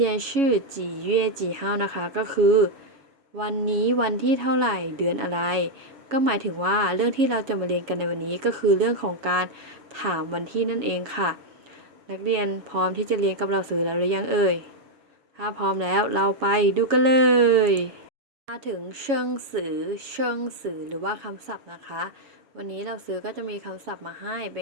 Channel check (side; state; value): left; late; 7.2 ms